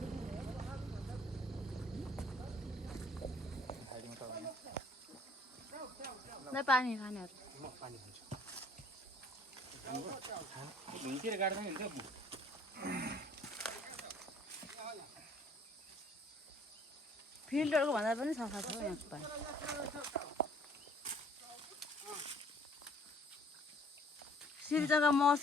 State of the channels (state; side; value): normal; both; correlation 0.57